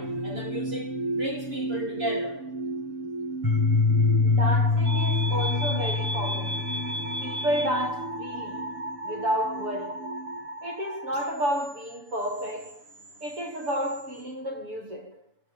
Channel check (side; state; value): left; late; 6.9 ms